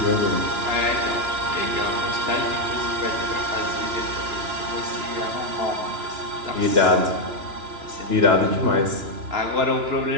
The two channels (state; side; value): late; left; 2.9 ms